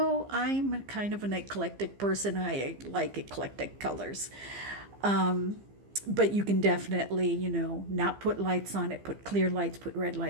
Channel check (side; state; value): left; late; 15 ms